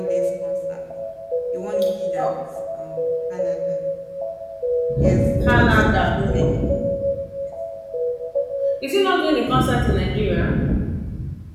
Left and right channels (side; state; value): both; identical; correlation 1.00